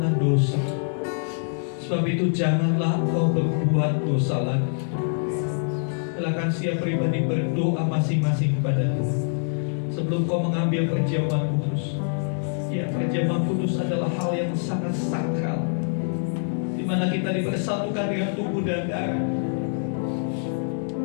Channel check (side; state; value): right; silent; digital silence